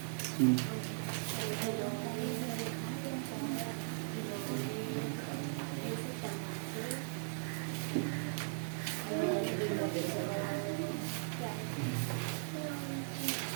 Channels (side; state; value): left; silent; 52 dB below the other